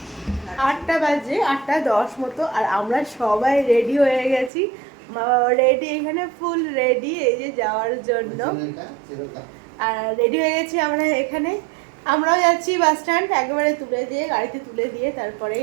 8টা বাজে, 8:10 মতো, আর আমরা সবাই রেডি হয়ে গেছি। মা বাবা রেডি, এখানে ফুল রেডি এই যে যাওয়ার জন্য। আর রেডি হয়ে গেছি আমরা এখানে, আমরাও যাচ্ছি বাস স্ট্যান্ড, একেবারে তুলে দিয়ে গাড়িতে তুলে দিয়ে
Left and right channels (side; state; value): left; drops out; at 4.5 s